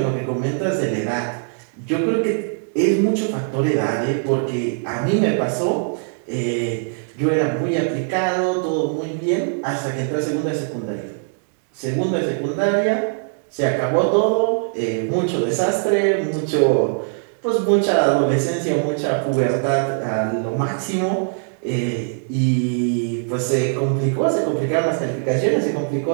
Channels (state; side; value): silent; left; digital silence